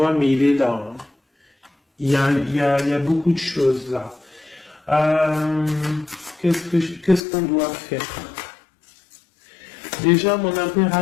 mais il est là. Hein. Il y a beaucoup de choses là. Qu'est-ce qu'on doit faire? Déjà, mon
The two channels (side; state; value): right; drops out; at 7.2 s